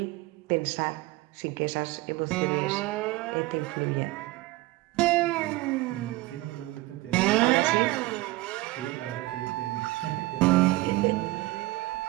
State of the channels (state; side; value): quieter; left; 19.5 dB